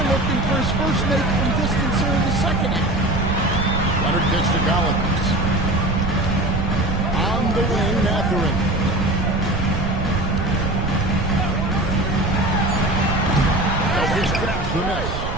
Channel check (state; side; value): noise; right; rumble, 5 dB below the sound